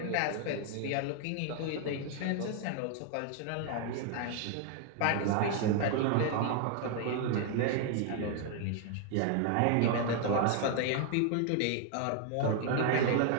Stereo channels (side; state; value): both; different; correlation 0.00